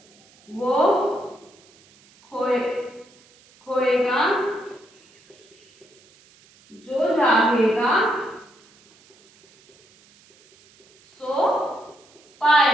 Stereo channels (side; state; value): right; noise; hiss, 29 dB below the sound